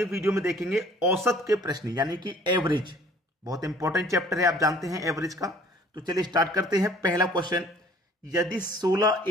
वीडियो में देखेंगे औसत के प्रश्न यानी कि एवरेज। बहुत इंपॉर्टेंट चैप्टर है, आप जानते हैं एवरेज का। तो चलिए स्टार्ट करते हैं। पहला क्वेश्चन, यदि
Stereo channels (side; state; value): both; normal; correlation 0.54